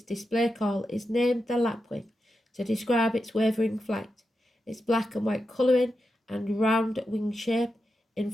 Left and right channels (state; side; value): normal; both; correlation 0.89